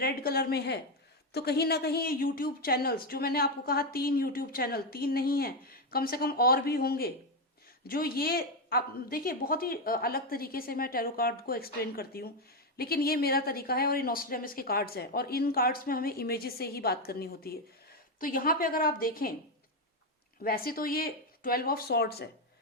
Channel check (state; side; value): normal; both; correlation 0.07